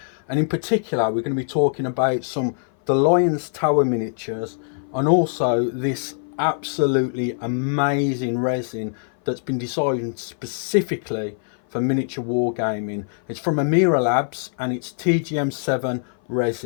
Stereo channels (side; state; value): right; silent; 58 dB below the other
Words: and in particular we're going to be talking about some the Lions Tower miniatures and also this absolutely amazing resin that's been designed specifically for miniature wargaming. It's from Amira Labs and it's TGM7